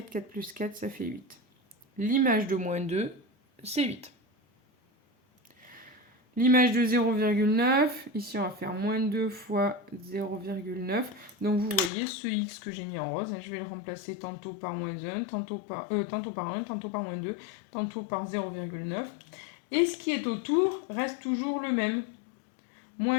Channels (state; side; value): drops out; right; at 11.9 s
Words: 4 plus 4, ça fait 8. L'image de moins 2, c'est 8. L'image de 0,9, ici on va faire moins 2 fois 0,9. Donc vous voyez ce x que j'ai mis en rose, je vais le remplacer tantôt par moins 1, tantôt par 1, tantôt par moins 2, tantôt par 0,9. Et ce qui est autour reste toujours le même.